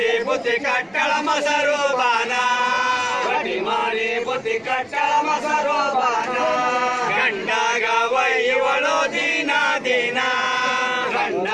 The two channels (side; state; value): both; identical; correlation 1.00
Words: ಬುದ್ಧಿ ಕಟ್ಟಳ ಮೊಸರು ಬಾನ ರೊಟ್ಟಿ ಮಾಡಿ ಬುದ್ಧಿ ಕಟ್ಟಳ ಮೊಸರು ಬಾನ ಗಂಡಾಗ ಒಯ್ಯುವಳು ದಿನ ದಿನ